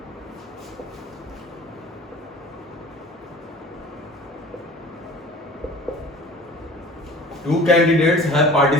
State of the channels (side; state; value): both; normal; correlation 0.44